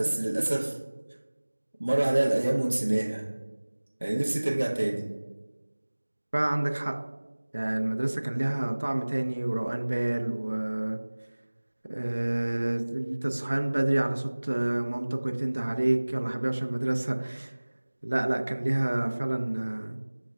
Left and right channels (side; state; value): both; inverted; correlation -1.00